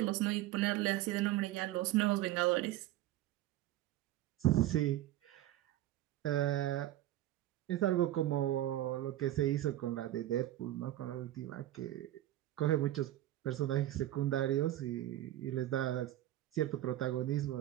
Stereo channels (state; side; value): quieter; left; 14.2 dB